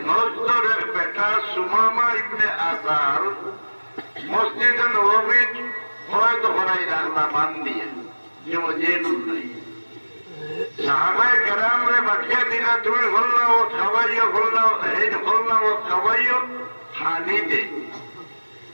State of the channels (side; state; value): both; inverted; correlation -1.00